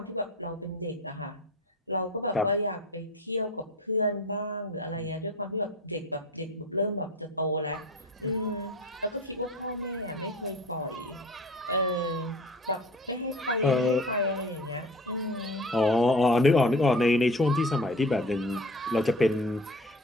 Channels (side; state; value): both; normal; correlation 0.40